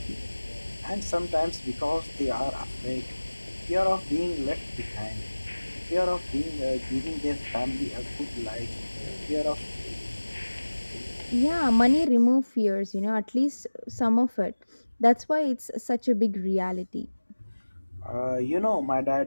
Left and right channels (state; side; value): inverted; both; correlation -1.00